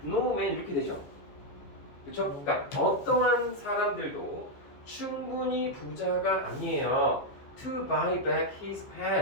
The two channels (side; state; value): right; late; 15 ms